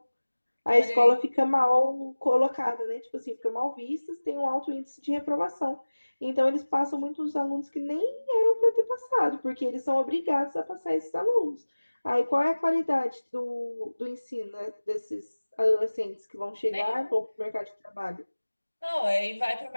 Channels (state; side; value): inverted; both; correlation -1.00